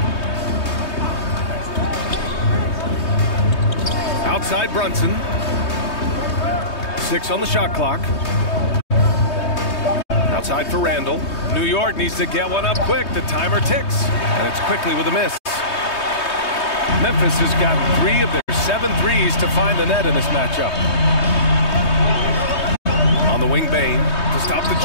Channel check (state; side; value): late; right; 3.2 ms